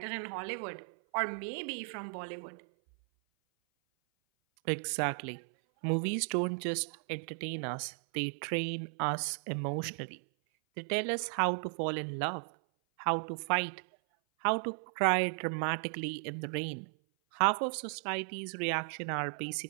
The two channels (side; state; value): left; silent; 54 dB below the other